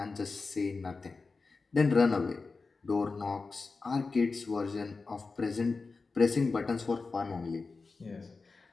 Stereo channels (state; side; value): quieter; right; 4.1 dB